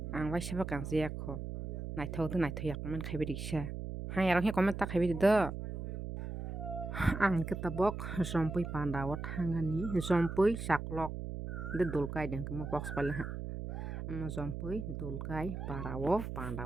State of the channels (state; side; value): noise; right; hum, 6 dB below the sound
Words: ang wai saba kang jiak ho naithok do naithoyak man khaibe diksa hai arok he comment ta khaibe do ang ke tabok jampui pandawo thangani jampui saklok de dulkai deng mo box pala ama jampui dulkai parawo